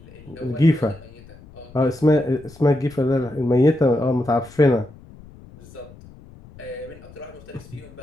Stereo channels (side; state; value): left; noise; rumble, 21 dB below the sound